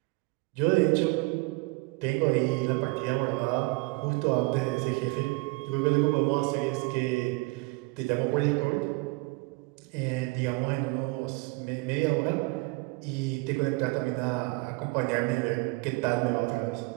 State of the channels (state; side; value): quieter; left; 26.1 dB